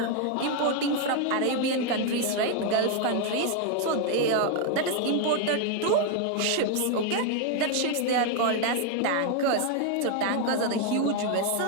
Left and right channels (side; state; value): both; different; correlation 0.01